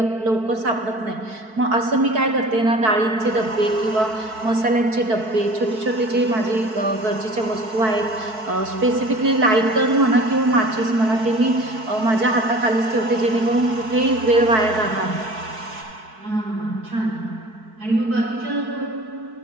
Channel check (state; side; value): late; left; 4.6 ms